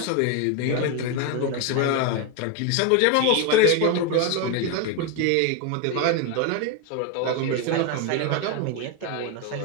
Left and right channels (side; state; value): both; different; correlation 0.02